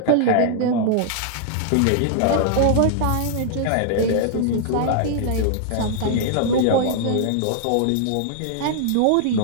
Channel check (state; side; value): different; both; correlation -0.01